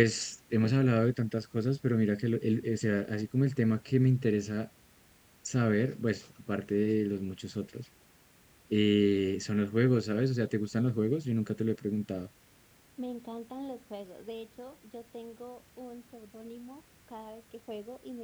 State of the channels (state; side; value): identical; both; correlation 1.00